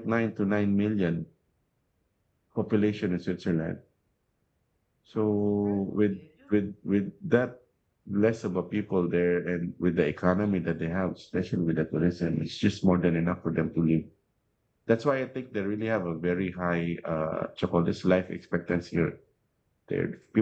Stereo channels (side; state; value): both; identical; correlation 1.00